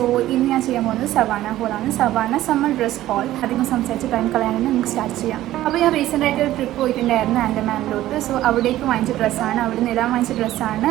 ഇന്ന് ഞാൻ ചെയ്യാൻ പോകുന്നത് സവാന ഹോളാണ്. Savana summer dress haul. അധികം സംസാരിച്ച് ടൈം കളയാനാണ് നമുക്ക് സ്റ്റാർട്ട് ചെയ്യാം. അപ്പോൾ ഞാൻ റീസെൻ്റ് ആയിട്ട് ഒരു ട്രിപ്പ് പോയിട്ടുണ്ടായിരുന്നു ആൻഡമാനിലോട്ട്. സോ അവിടേക്ക് വാങ്ങിച്ച ഡ്രസ്സാണ്, അവിടെ നിന്ന് ഇടാൻ വാങ്ങിച്ച ഡ്രസ്സാണ്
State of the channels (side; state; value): left; quieter; 14.5 dB